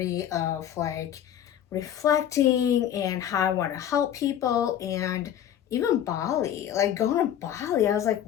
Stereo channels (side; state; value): right; quieter; 10.4 dB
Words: of like reflecting and how I want to help people, and even Bali, like going to Bali, I was like,